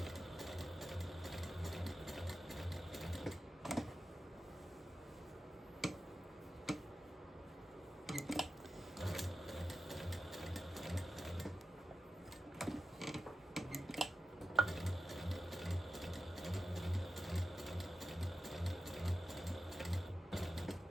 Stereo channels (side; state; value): both; normal; correlation 0.91